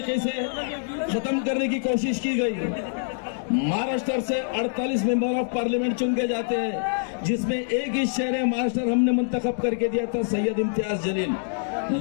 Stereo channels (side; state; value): right; silent; digital silence